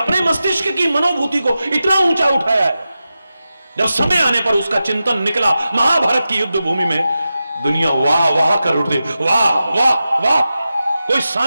मस्तिष्क की मनोभूति को इतना ऊंचा उठाया है, जब समय आने पर उसका चिंतन निकला महाभारत की युद्ध भूमि में, दुनिया वाह वाह कर उठती, वाह वाह वाह। कोई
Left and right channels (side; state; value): both; inverted; correlation -0.92